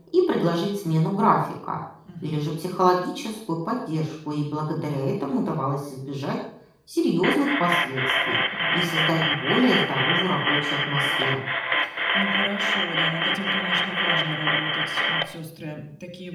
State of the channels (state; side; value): identical; both; correlation 1.00